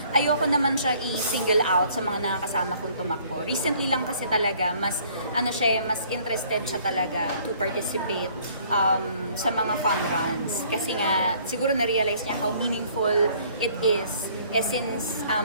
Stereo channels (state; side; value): inverted; both; correlation -0.59